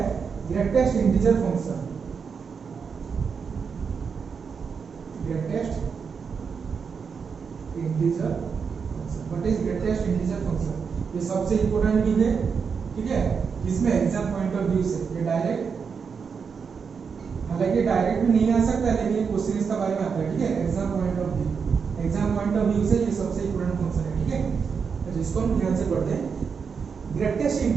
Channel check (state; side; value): quieter; left; 6.0 dB